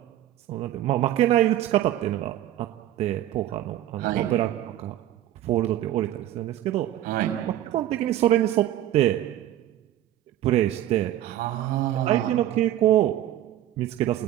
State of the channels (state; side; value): quieter; left; 12.9 dB